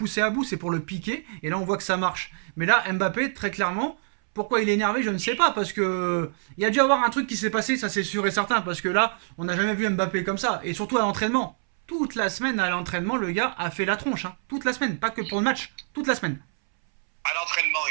à bout, c'est pour le piquer, et là, on voit que ça marche. Mais là, Mbappé, très clairement, pourquoi il est énervé, je ne sais pas, parce que il y a dû avoir un truc qui s'est passé, ça c'est sûr et certain, parce que là, on n'a jamais vu Mbappé comme ça, et surtout à l'entraînement. Toute la semaine à l'entraînement, le gars a fait la tronche, hein. Toute la semaine, pas que pour le match, toute la semaine. À l'entraînement,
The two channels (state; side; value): silent; left; 61 dB below the other